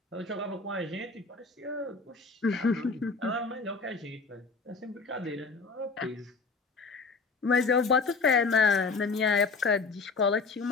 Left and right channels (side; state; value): right; quieter; 4.3 dB